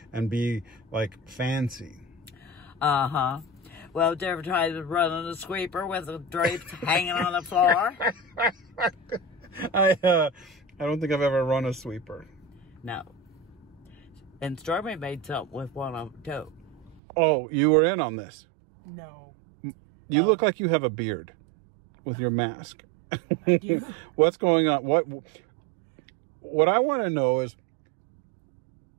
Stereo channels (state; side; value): drops out; left; at 17.0 s